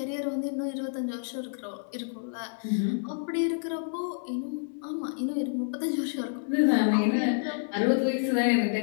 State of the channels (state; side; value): silent; right; digital silence